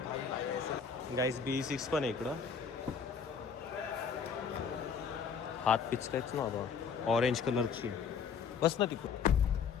गाईस. B6 पण आहे इकडं. हात पिचकायच ना बाबा, ऑरेंज कलरची. बस ना तिकडं.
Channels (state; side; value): quieter; right; 6.3 dB